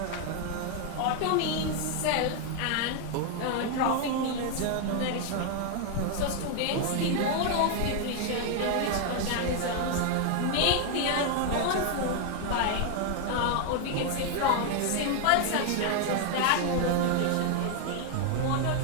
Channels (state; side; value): different; both; correlation 0.00